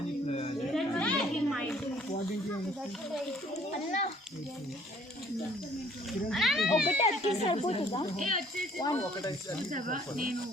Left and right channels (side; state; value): both; normal; correlation 0.58